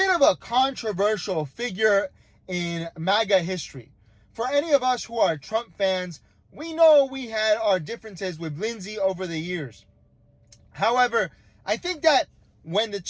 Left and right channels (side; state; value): both; identical; correlation 1.00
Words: of a controversial figure in MAGA history. For any of us who are Trump fans, we know we had our differences with Lindsey over the years. However, I think that when the